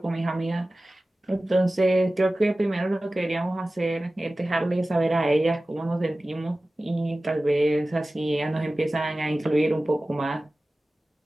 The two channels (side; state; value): both; normal; correlation 0.97